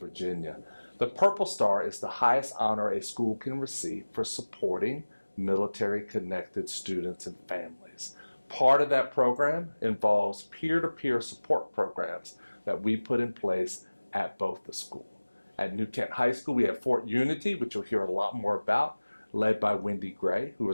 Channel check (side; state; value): both; inverted; correlation -1.00